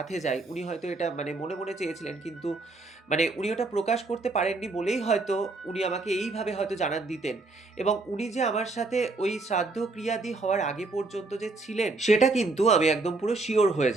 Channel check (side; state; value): left; quieter; 3.4 dB